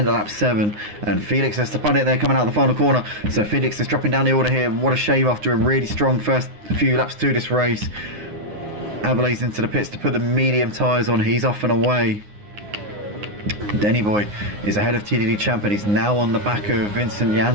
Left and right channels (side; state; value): left; late; 9.6 ms